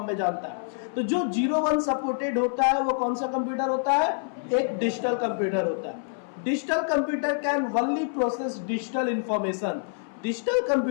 में जानता है। तो जो 0-1 सपोर्टेड होता है वो कौन सा कंप्यूटर होता है, एक डिजिटल कंप्यूटर होता है। Digital computer can only process digital information. Digital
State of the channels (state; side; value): silent; right; 58 dB below the other